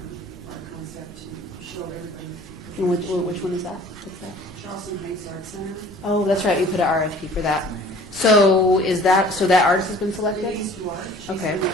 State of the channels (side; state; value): both; normal; correlation 0.49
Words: our concept to show everybody. And which one is that? What's that? Charleston Heights Art Center. Oh, that's right. You put an RFP for that. So that artist has been selected? Denise Duarte. She's Okay. been